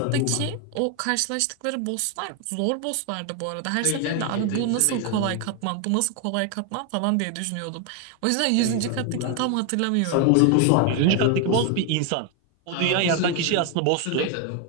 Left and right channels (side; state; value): both; different; correlation 0.01